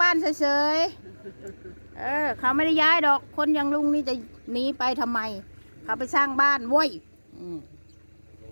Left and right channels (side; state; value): both; inverted; correlation -1.00